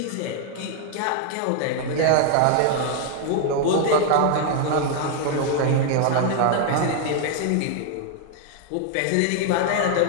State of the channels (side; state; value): both; different; correlation 0.00